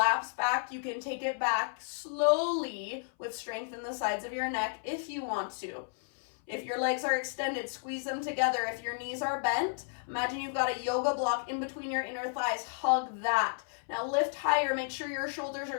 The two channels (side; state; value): right; silent; 56 dB below the other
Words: back. You can take it back slowly with strength in the sides of your neck if you want to. If your legs are extended, squeeze them together. If your knees are bent, imagine you've got a yoga block in between your inner thighs. Hug that. Now lift higher. Make sure your shoulders